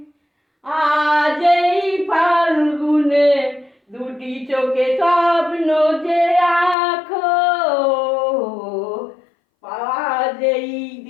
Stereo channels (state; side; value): drops out; right; at 6.8 s